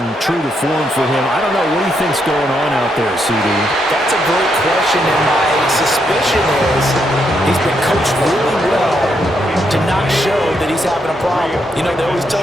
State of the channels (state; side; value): normal; both; correlation 0.78